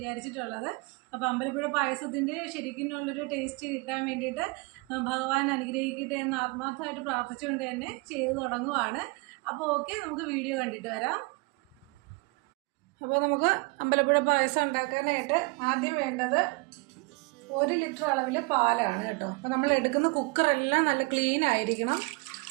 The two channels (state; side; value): quieter; left; 27.2 dB